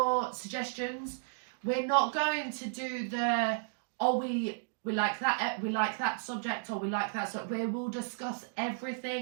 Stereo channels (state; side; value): silent; left; digital silence